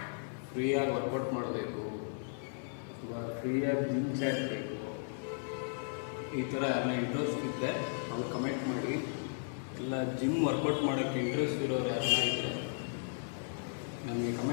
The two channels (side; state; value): right; silent; 54 dB below the other